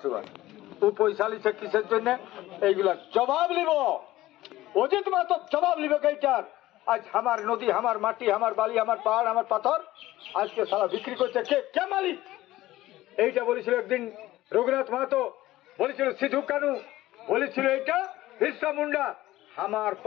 ও পয়সা লিছে কিসের জন্য? এইগুলা জবাব নিব, অজিত মাহাতো জবাব নিবে এইটার। আজ আমার নদী, আমার মাটি, আমার বালি, আমার পাহাড়, আমার পাথর আজকে সারা বিক্রি করছে কে? কে মালিক? এইটা বলেছিল একদিন রঘুনাথ মাহাতো, বলেছিল সিধু কানু, বলেছিল এইটা বিরসা মুন্ডা। আমার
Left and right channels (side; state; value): right; quieter; 16.2 dB